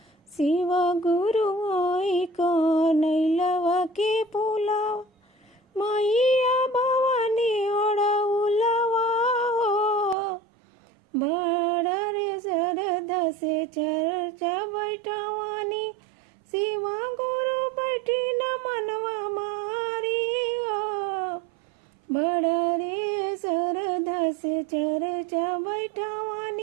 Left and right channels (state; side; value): drops out; left; at 10.2 s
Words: शिव गुरु आई कनैलवा के फुलावा मैया भवानी अड़उलवा बड़ा रे श्रद्धा से चर्चा बैठवानी शिवा गुरु बैठी न मनवा मारी बड़ा रे श्रद्धा से चर्चा